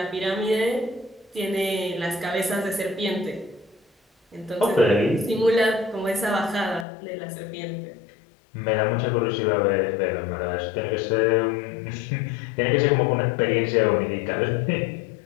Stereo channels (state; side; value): drops out; right; at 6.9 s